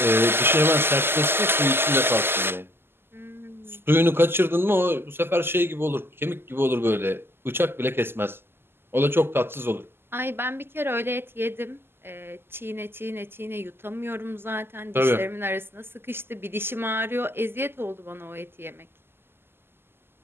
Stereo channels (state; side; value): late; left; 0.11 ms